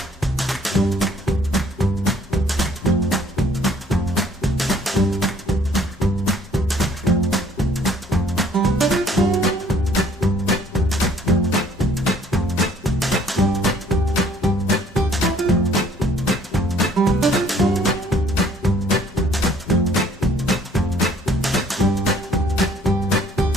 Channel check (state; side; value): normal; both; correlation 0.59